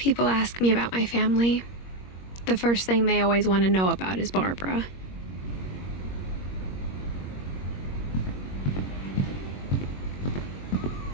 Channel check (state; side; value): late; right; 21 ms